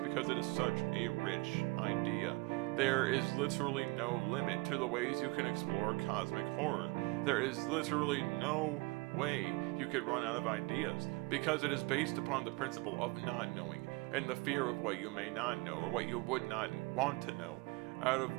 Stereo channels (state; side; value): quieter; left; 25.2 dB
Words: it is such a rich idea. There is literally no limit to the ways you can explore cosmic horror. There is literally no way you could run out of ideas because it is based upon the principle of not knowing and the fear of what you may not know or what you would not want to know, out